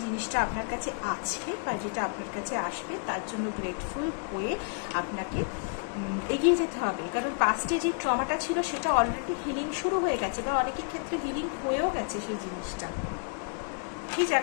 জিনিসটা আপনার কাছে আছে বা যেটা আপনার কাছে আসবে তার জন্য গ্রেটফুল হয়ে আপনাকে এগিয়ে যেতে হবে। কারণ পাস্টে যে ট্রমাটা ছিল সেটা অলরেডি হিলিং শুরু হয়ে গেছে বা অনেকের ক্ষেত্রে হিলিং হয়েও গেছে সেই জিনিসটা। সেই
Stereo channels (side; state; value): right; quieter; 38.4 dB